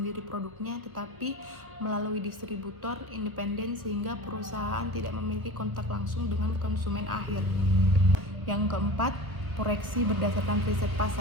produknya, tetapi melalui distributor independen sehingga perusahaan tidak memiliki kontak langsung dengan konsumen akhir. Yang keempat, proyeksi berdasarkan riset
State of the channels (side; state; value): left; late; 1.3 ms